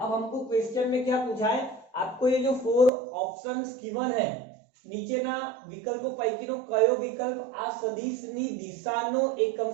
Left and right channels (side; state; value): left; drops out; at 2.9 s